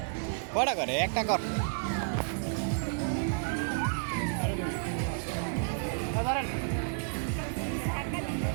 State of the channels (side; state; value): left; silent; digital silence